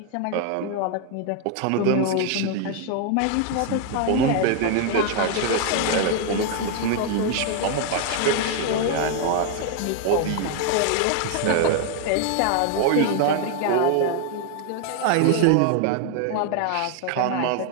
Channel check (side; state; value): both; different; correlation 0.00